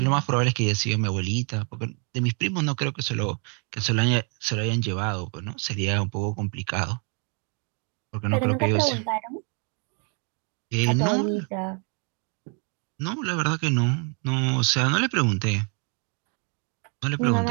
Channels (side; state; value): left; quieter; 38.1 dB